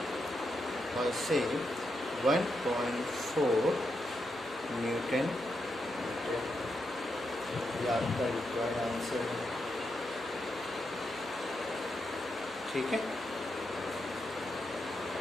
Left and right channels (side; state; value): right; noise; hum, 26 dB below the sound